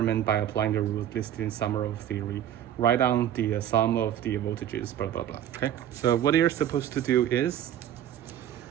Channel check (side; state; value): left; quieter; 10.7 dB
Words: by applying the rules listed in summary of theory. Write down the sum of the voltages, blah blah blah. Okay, so what you're supposed to do is,